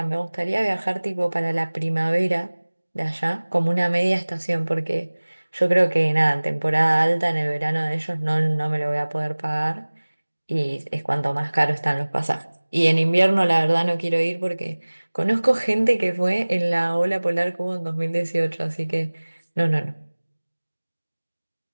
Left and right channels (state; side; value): inverted; both; correlation -1.00